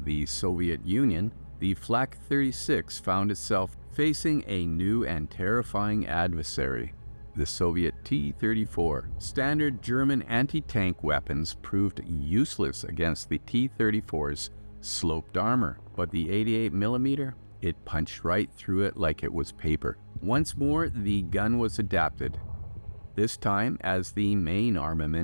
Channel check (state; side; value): inverted; both; correlation -1.00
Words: the Soviet Union, the Flak 36 found itself facing a new and terrifying adversary, the Soviet T-34. Standard German anti-tank weapons proved useless against the T-34's sloped armor, but the 88mm, it punched right through it like it was paper. Once more, the gun was adapted, this time as the main